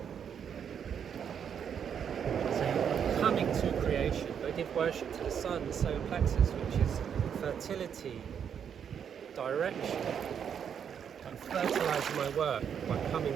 So you're coming to creation. I give worship to the sun, the solar plexus, which is fertility, direction, and fertilising my work by coming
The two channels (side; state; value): left; quieter; 7.9 dB